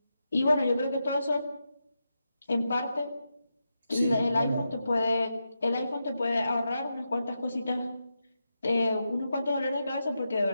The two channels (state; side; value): inverted; both; correlation -0.87